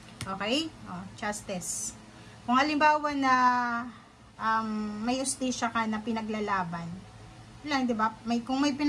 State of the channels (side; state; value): both; identical; correlation 1.00